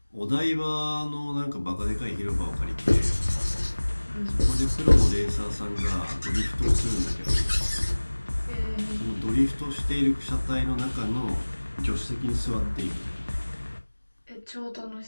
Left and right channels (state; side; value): inverted; both; correlation -1.00